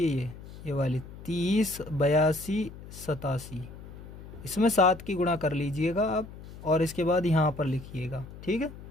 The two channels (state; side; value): noise; left; hum, 15 dB below the sound